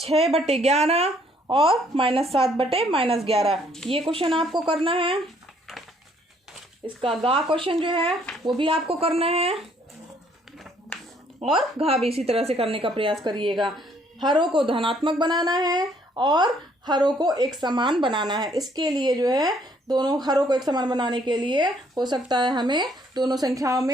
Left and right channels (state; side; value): normal; both; correlation 0.65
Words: और -7/-11, ये क्वेश्चन आपको करना है। इसका गा क्वेश्चन जो है वो भी आपको करना है और घा भी इसी तरह से करने का प्रयास करिएगा। हरों को धनात्मक बनाना है और हरों को एक समान बनाना है। इसके लिए जो है दोनों हरों को एक समान बनाने के लिए हो सकता है हमें दोनों संख्याओं